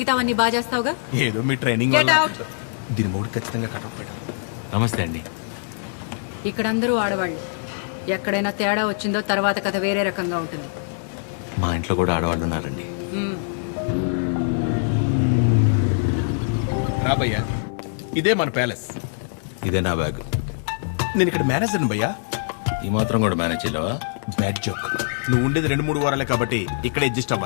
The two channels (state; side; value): silent; right; digital silence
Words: బాగా చేస్తావుగా. ఏదో మీ ట్రైనింగ్. దీని మూడు ఖచ్చితంగా కటౌట్ పెట్టాలి. నమస్తే అండి. ఇక్కడ అందరూ ఆడవాళ్ళు. ఎక్కడైనా తేడా వచ్చిందో తర్వాత కథ వేరే రకంగా ఉంటుంది. మా ఇంట్లో కూడా ఆడవాళ్ళు ఉన్నారండి. రాబయ్యా, ఇదే మన ప్యాలెస్. ఇదే నా బ్యాగ్. నేను ఇక్కడ మేనేజర్ని భయ్యా. ఈ మాత్రం కూడా మేనేజ్ చేయలేవా? Bad joke. నువ్వు ఉండేది 2-3 వారాలే కాబట్టి ఇక్కడ అడ్జస్ట్